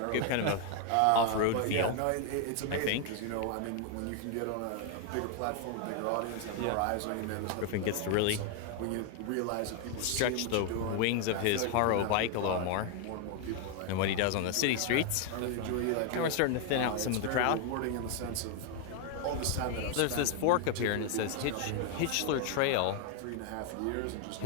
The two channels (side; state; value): both; different; correlation 0.01